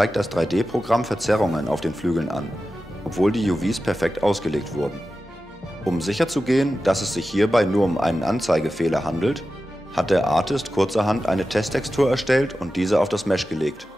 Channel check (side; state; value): both; normal; correlation 0.93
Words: das 3D-Programm Verzerrungen auf den Flügeln an, obwohl die UVs perfekt ausgelegt wurden. Um sicherzugehen, dass es sich hierbei nur um einen Anzeigefehler handelt, hat der Artist kurzerhand eine Testtextur erstellt und diese auf das Mesh gelegt.